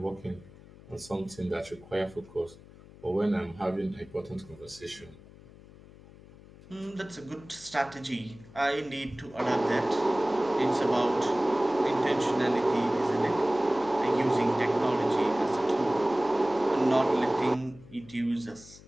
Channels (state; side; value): noise; left; hum, 21 dB below the sound